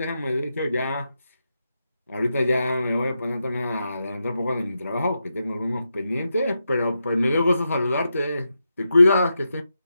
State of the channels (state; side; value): inverted; both; correlation -0.87